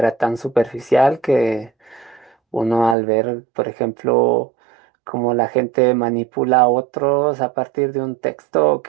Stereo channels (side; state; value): left; drops out; at 3.0 s